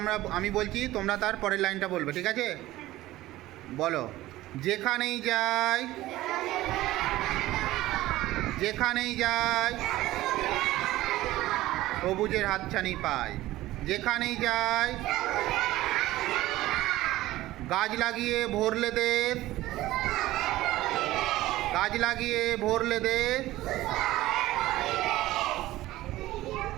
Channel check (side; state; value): left; quieter; 16.4 dB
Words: আমি বলছি, তোমরা তার পরের লাইনটা বলবে, ঠিক আছে? বলো। যেখানেই যাই, যেখানেই যাই সবুজের হাতছানি পাই। যেখানেই যাই গাছ লাগিয়ে ভরলে দেশ, গাছ লাগিয়ে ভরলে দেশ।